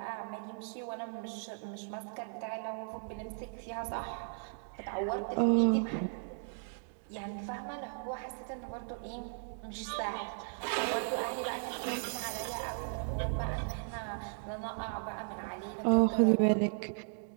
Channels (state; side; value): silent; left; digital silence